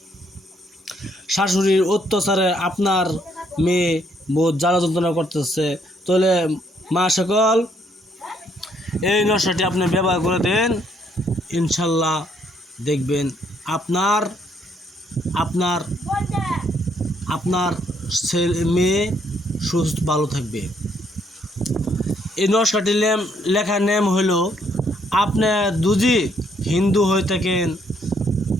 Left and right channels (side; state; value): both; normal; correlation 0.70